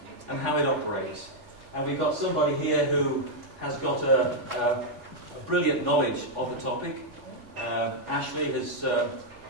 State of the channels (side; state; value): left; late; 3.4 ms